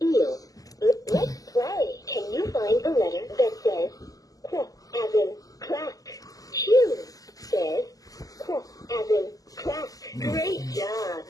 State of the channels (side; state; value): right; late; 0.17 ms